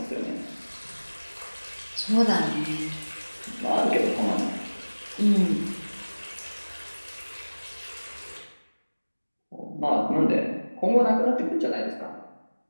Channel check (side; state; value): both; inverted; correlation -1.00